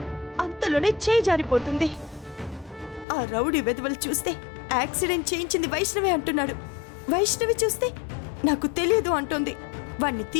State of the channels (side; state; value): right; drops out; at 3.1 s